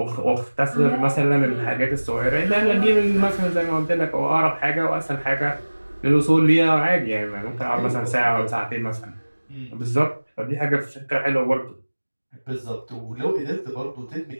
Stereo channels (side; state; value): both; inverted; correlation -1.00